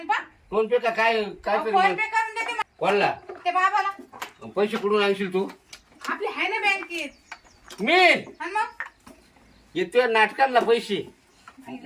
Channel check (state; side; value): identical; both; correlation 1.00